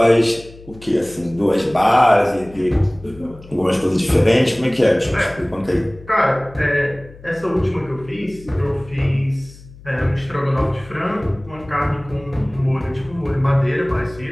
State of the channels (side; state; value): left; noise; hum, 20 dB below the sound